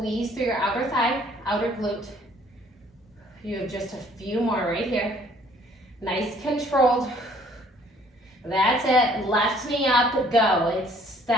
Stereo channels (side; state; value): both; normal; correlation 0.59